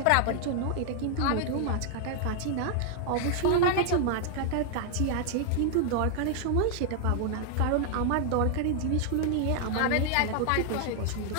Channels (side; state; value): both; different; correlation 0.00